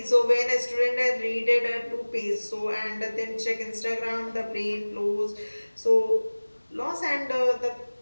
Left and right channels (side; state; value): both; inverted; correlation -1.00